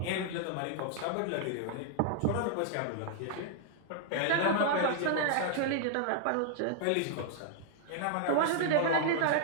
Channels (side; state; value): both; different; correlation 0.00